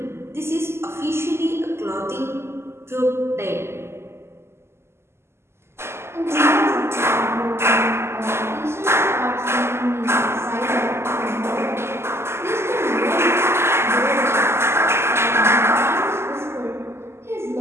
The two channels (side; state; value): left; late; 0.12 ms